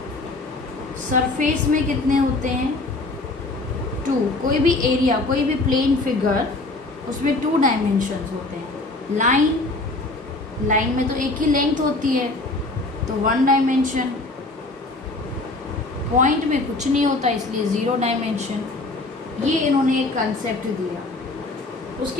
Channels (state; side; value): quieter; right; 3.1 dB